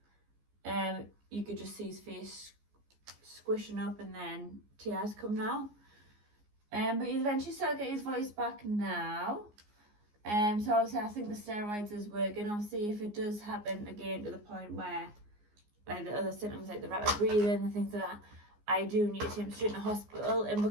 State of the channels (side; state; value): left; late; 14 ms